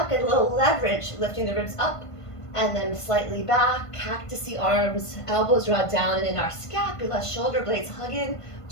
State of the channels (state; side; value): late; right; 1.5 ms